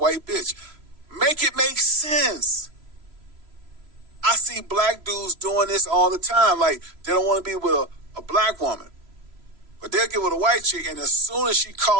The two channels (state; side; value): late; left; 3.0 ms